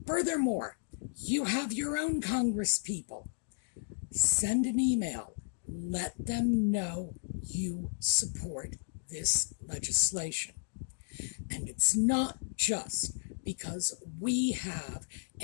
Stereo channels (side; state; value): right; silent; digital silence